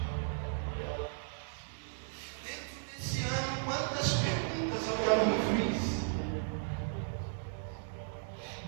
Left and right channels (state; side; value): silent; left; digital silence